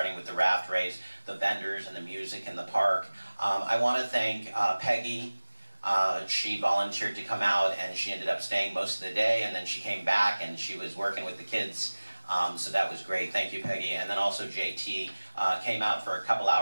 with the raft race, the vendors and the music in the park. I want to thank Peggy. She volunteered to come out, and she ended up staying most of the day, and then she came back and she was working with the kids. So that was great. Thank you, Peggy. And then also JT came out for a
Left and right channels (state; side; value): inverted; both; correlation -1.00